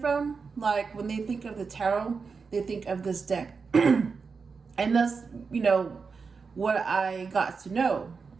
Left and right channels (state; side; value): quieter; left; 5.1 dB